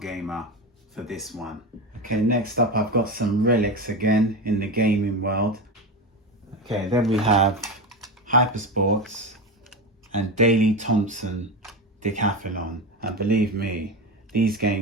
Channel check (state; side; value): normal; both; correlation 0.20